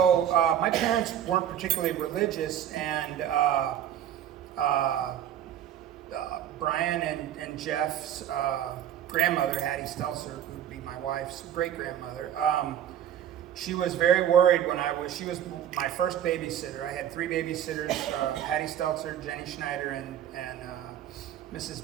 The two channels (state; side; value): quieter; left; 10.5 dB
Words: my parents weren't particularly religious, and Brian and Jeff's grandmother, Hattie Stelzer, who would be my wife's great grandmother. She was very worried when she was my first babysitter. I had 3 babysitters: Hattie Stelzer, Jenny Schneider, and Mrs.